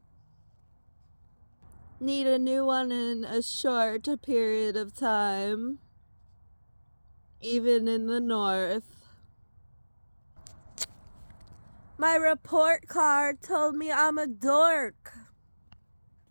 Need a new one in a short period of time. Even in the north. My report card told me I'm a dork.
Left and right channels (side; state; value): both; inverted; correlation -1.00